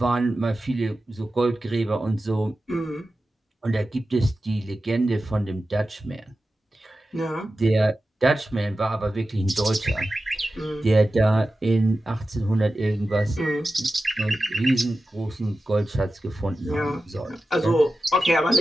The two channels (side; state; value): both; normal; correlation 0.93